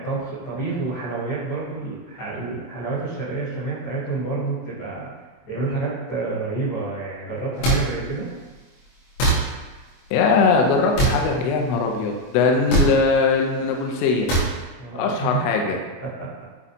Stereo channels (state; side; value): late; right; 24 ms